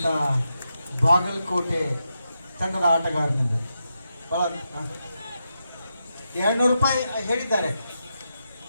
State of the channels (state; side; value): inverted; both; correlation -0.86